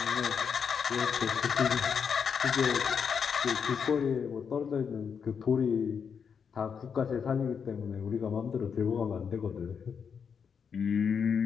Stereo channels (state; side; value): quieter; right; 6.7 dB